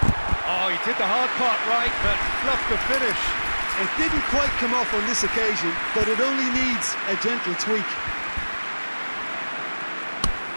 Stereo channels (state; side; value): inverted; both; correlation -1.00